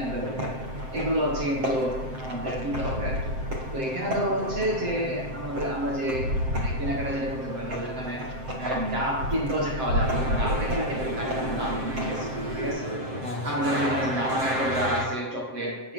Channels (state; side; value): late; left; 7.7 ms